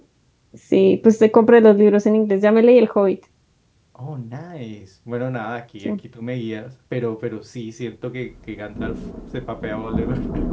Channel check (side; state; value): both; identical; correlation 1.00